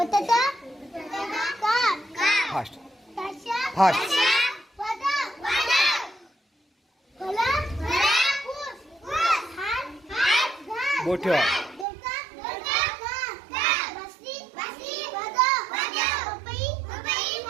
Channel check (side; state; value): left; drops out; at 11.9 s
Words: फास्ट ताशा फास्ट. बोट ठेवा.